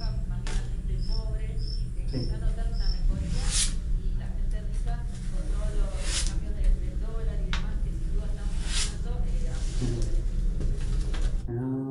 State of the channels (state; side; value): identical; both; correlation 1.00